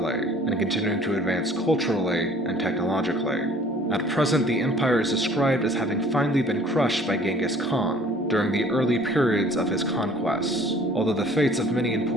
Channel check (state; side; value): normal; both; correlation 0.53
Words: and continuing to advance culturally and technologically. At present, the empire is described as having finally been crushed by Genghis Khan during the early periods of his conquests, although the fates of many